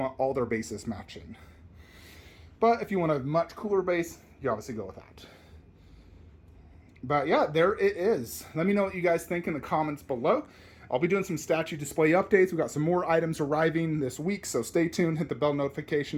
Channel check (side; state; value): both; identical; correlation 1.00